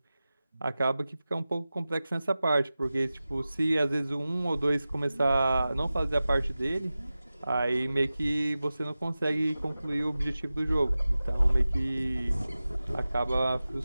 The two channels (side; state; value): both; inverted; correlation -0.95